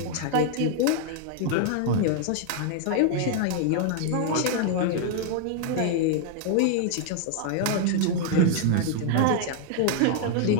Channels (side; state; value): both; different; correlation 0.00